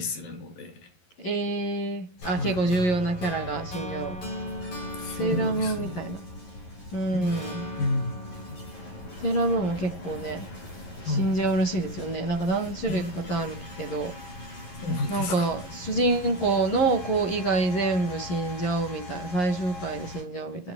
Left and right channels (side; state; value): right; late; 11 ms